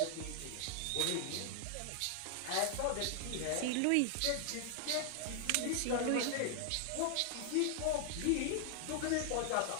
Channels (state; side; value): different; both; correlation 0.00